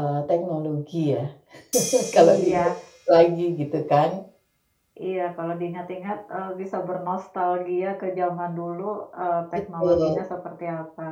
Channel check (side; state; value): both; identical; correlation 1.00